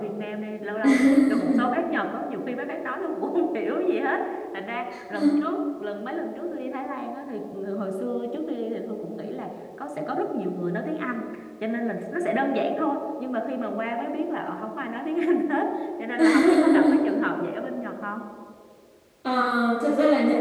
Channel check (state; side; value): identical; both; correlation 1.00